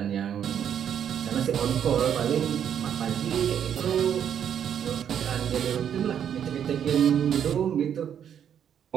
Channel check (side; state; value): left; quieter; 8.9 dB